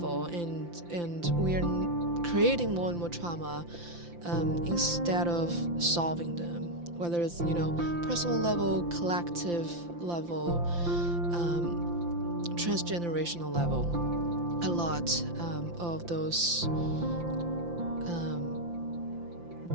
and we are creating more and more trauma instead of solving them, whether it's personal level, collective level, transgenerational level. A lot of those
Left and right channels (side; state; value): left; late; 5.8 ms